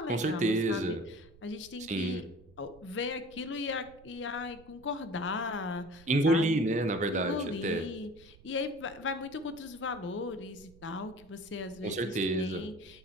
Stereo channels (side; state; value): right; noise; rumble, 24 dB below the sound